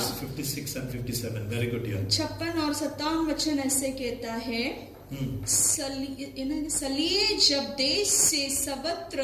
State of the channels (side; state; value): both; identical; correlation 1.00